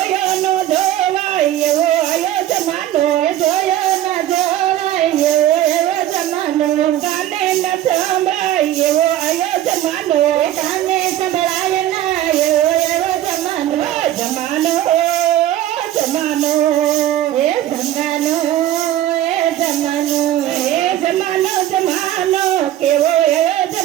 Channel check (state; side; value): quieter; left; 12.7 dB